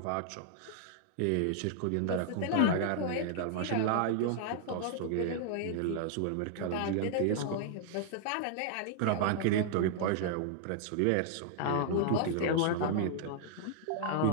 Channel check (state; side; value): different; both; correlation -0.01